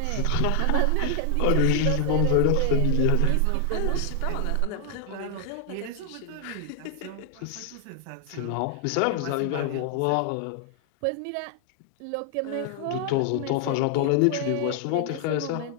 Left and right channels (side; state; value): both; different; correlation 0.00